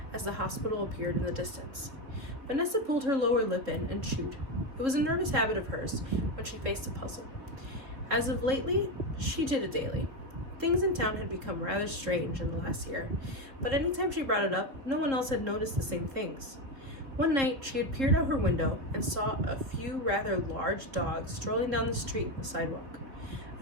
as the hospital appeared in the distance. Vanessa pulled her lower lip in and chewed. It was a nervous habit of hers when she faced a puzzle. As of lately, she did it daily. Things in town had become rather strange in the last year, but anytime she brought it up, no one else had noticed the same things. One night, she had peered out her window and saw a few rather large dogs strolling down the street on the sidewalk.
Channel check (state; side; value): late; left; 3.5 ms